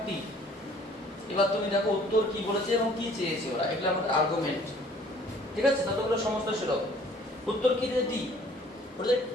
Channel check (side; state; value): both; normal; correlation 0.55